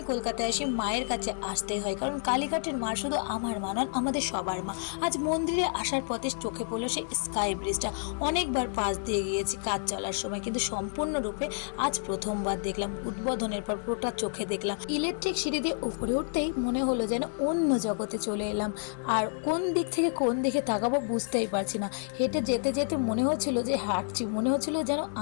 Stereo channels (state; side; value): silent; right; 58 dB below the other